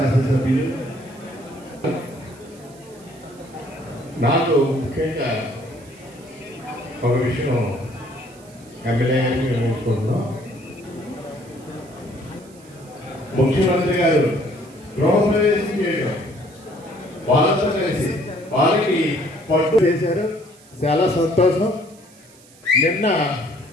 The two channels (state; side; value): noise; right; hiss, 25 dB below the sound